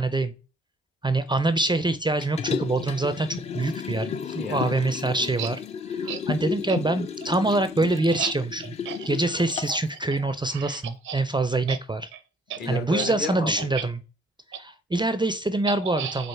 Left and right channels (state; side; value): normal; both; correlation 0.61